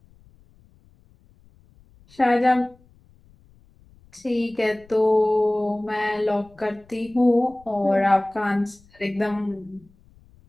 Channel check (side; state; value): left; noise; rumble, 29 dB below the sound